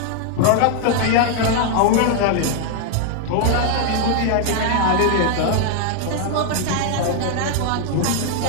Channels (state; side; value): different; both; correlation 0.00